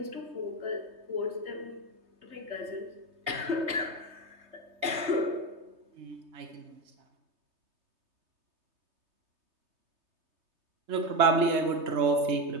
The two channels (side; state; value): left; late; 3.2 ms